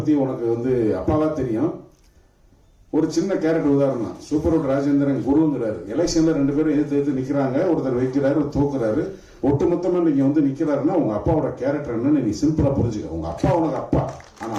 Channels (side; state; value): both; identical; correlation 1.00